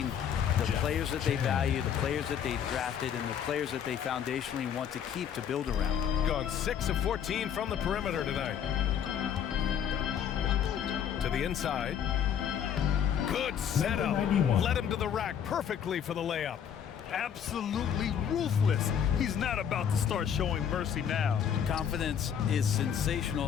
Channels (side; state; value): right; quieter; 8.6 dB